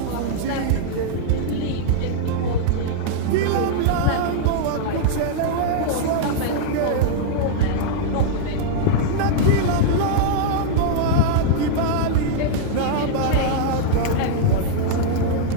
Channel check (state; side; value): different; both; correlation -0.01